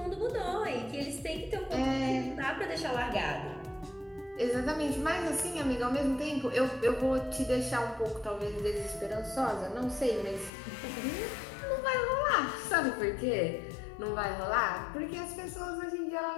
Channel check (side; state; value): right; drops out; at 10.5 s